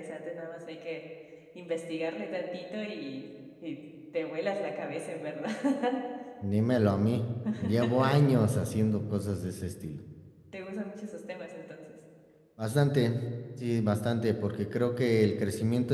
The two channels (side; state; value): both; identical; correlation 1.00